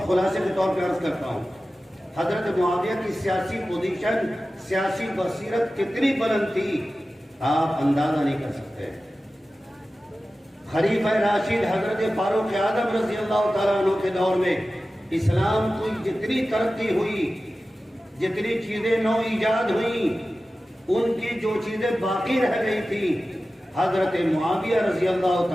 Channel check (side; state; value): both; normal; correlation 0.95